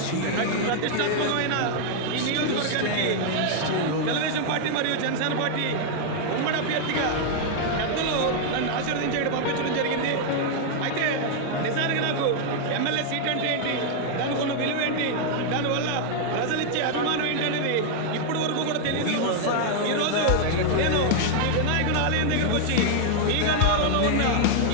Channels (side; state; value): both; different; correlation 0.00